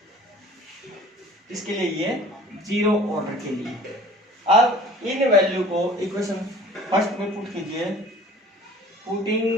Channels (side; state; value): both; normal; correlation 0.47